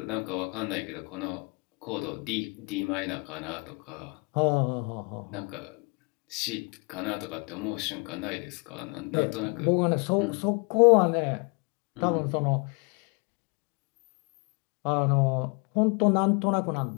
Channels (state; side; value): quieter; right; 33.1 dB